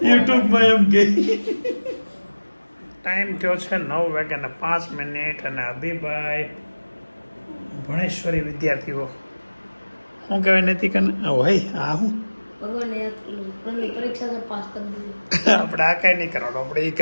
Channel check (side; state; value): both; inverted; correlation -1.00